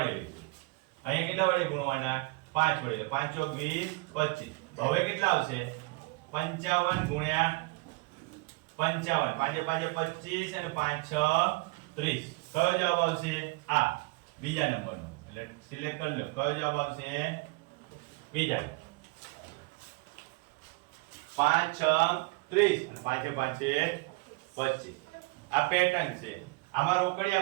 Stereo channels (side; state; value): left; quieter; 26.5 dB